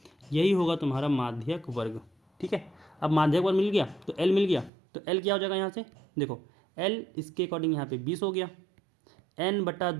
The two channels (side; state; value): left; drops out; at 4.7 s